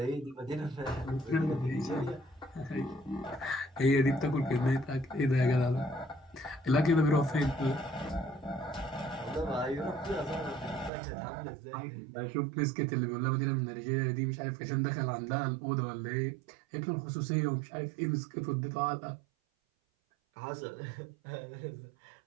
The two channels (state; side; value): drops out; left; at 10.9 s